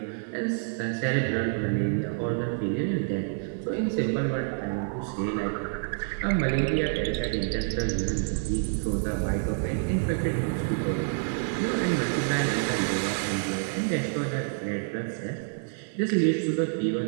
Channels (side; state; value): left; silent; 56 dB below the other